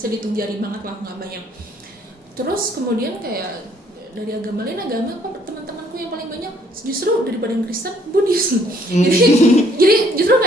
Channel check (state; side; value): normal; both; correlation 0.64